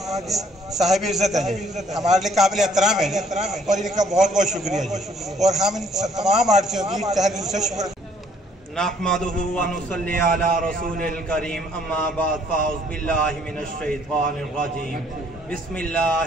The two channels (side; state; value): both; normal; correlation 0.64